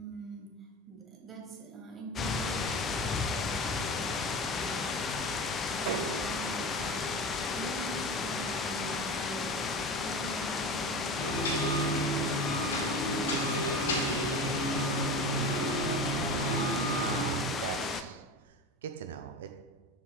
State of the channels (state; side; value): normal; both; correlation 0.29